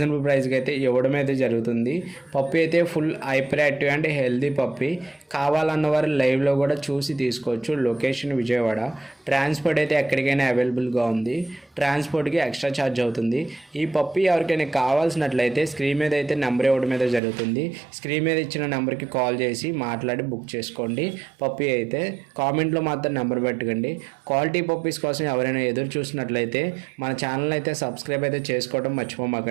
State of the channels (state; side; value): drops out; left; at 17.2 s